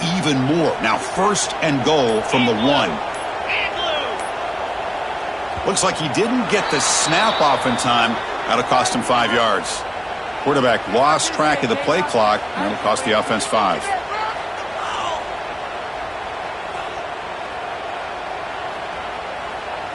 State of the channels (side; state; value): both; identical; correlation 1.00